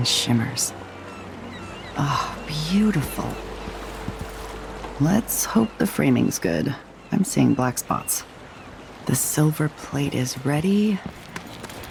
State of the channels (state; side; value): identical; both; correlation 1.00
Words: shimmers. Ah, beautiful. Let's hope the framing's good. I'm seeing black spots. The silver plate is ready.